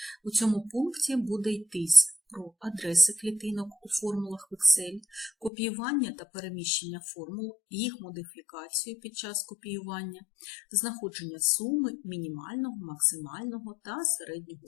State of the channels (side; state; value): right; drops out; at 5.5 s